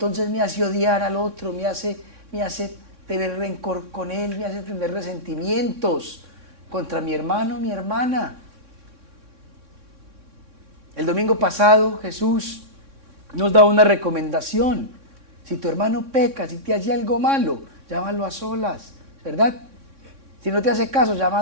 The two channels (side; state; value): left; late; 3.6 ms